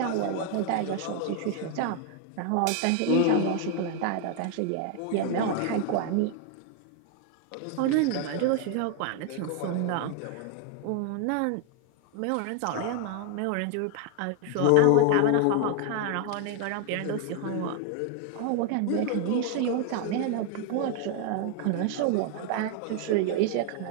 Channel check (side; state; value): both; different; correlation 0.00